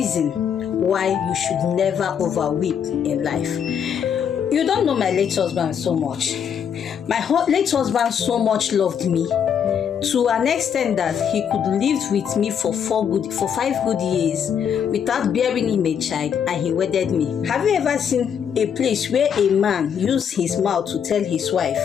why you should never overweep in life. You don't know my late husband so much. My late husband so much loved me to an extent that he could live with me for 5 good years without bearing him a child, and he wedded me. Have you ever seen a place where a man used his mouth to tell his wife,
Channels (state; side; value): quieter; right; 7.9 dB